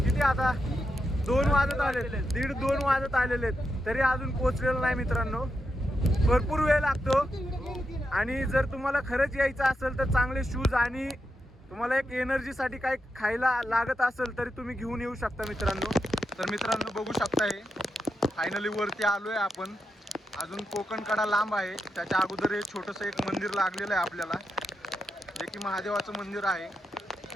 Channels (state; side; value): normal; both; correlation 0.86